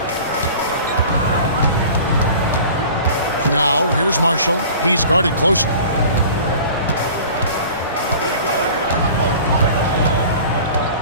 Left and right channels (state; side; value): inverted; both; correlation -0.42